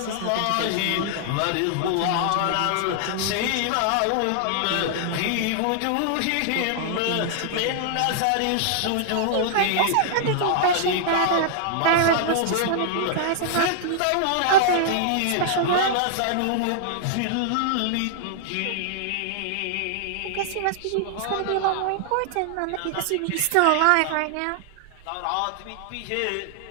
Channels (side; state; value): both; different; correlation -0.01